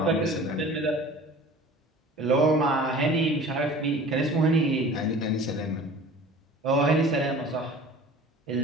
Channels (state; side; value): normal; both; correlation 0.43